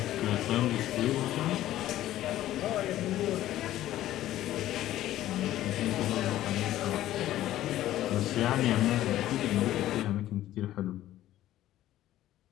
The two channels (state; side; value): quieter; right; 13.8 dB